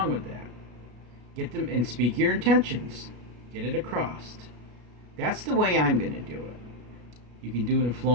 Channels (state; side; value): late; left; 33 ms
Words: with that. Get them and speak your intentions. Get it across. That's the way I'm going to do it. You can do it in